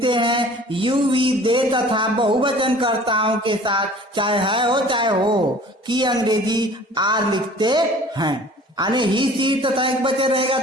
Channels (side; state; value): both; normal; correlation 0.48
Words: हैं। यू वी दे तथा बहुवचन कर्ताओं के साथ चाहे है हो चाहे हो की अंग्रेजी आर लिखते हैं। यानी ही सी तथा एक वचन रहेगा